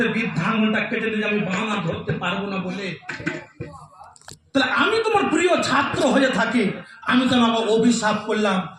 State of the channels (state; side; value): identical; both; correlation 1.00